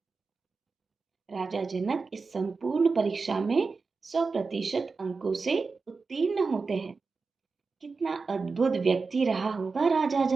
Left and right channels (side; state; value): left; quieter; 4.4 dB